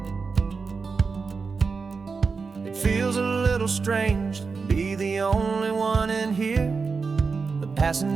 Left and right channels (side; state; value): left; quieter; 4.9 dB